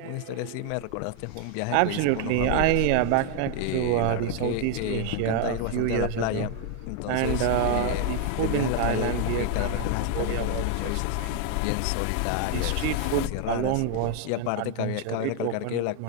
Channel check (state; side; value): different; both; correlation 0.01